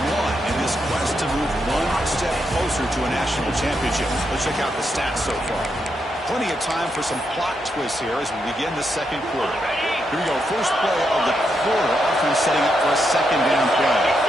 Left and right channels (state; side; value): normal; both; correlation 0.82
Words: one in this quest to move one step closer to a national championship. Let's check out the stats so far. Plenty of time for some plot twists here as we begin the second quarter. Here we go. First play of the quarter. Offense setting up for a second down play.